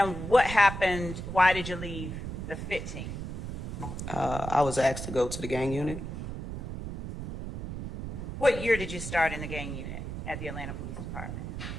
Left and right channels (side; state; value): right; noise; rumble, 6 dB below the sound